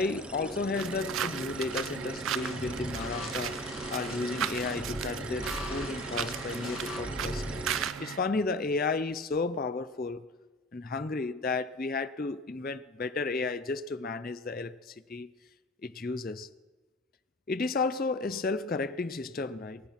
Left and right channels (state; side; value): normal; both; correlation 0.39